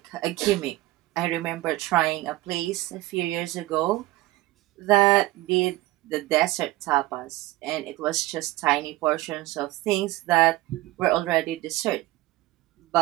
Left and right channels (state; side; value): quieter; left; 18.4 dB